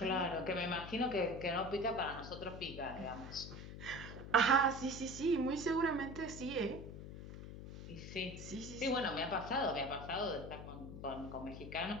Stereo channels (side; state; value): left; noise; hum, 10 dB below the sound